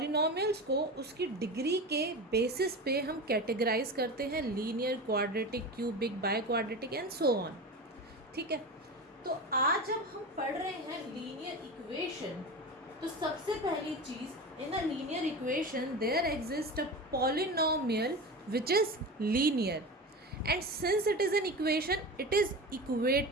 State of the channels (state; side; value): normal; both; correlation 0.27